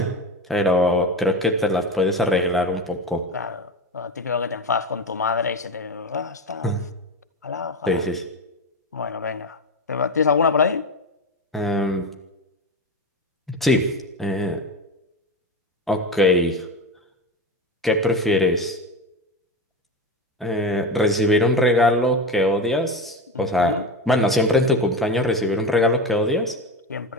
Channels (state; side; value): normal; both; correlation 0.21